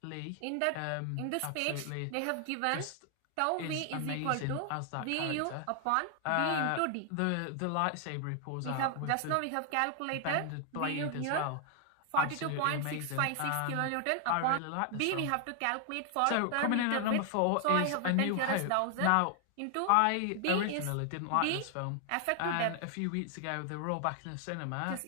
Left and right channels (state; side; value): different; both; correlation 0.00